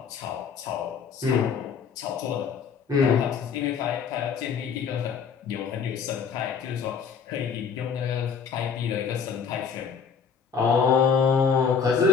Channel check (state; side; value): quieter; right; 6.3 dB